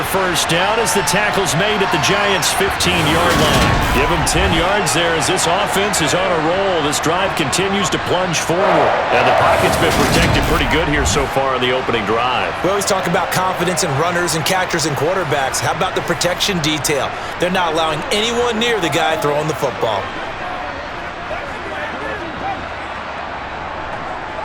first down as the tackle's made at the Giants' 15-yard line. Give them 10 yards there as this offense is on a roll. This drive continues to plunge forward. And the pocket's been protected pretty good here so far in the opening drive. We always talk about confidence in runners and catchers and quarterbacks. How about the protection detail? They're not allowing anyone near the guy throwing the football.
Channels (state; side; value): identical; both; correlation 1.00